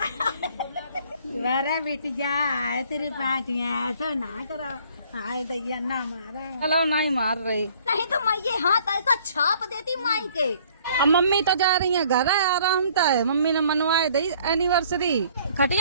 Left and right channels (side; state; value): both; inverted; correlation -0.58